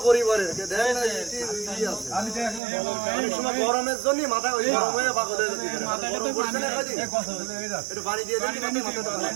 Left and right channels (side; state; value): left; drops out; at 2.6 s